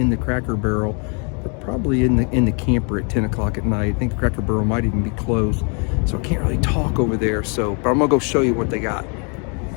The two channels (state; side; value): quieter; right; 37.4 dB